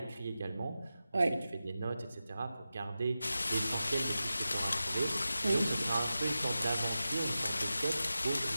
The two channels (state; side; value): inverted; both; correlation -0.93